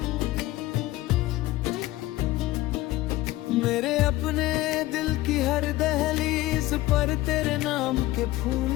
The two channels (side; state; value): right; quieter; 17.2 dB